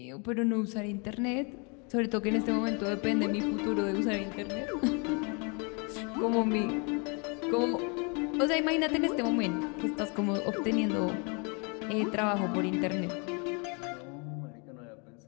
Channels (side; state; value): right; quieter; 33.9 dB